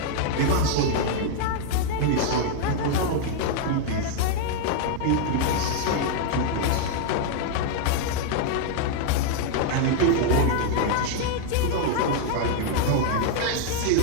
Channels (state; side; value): different; both; correlation 0.00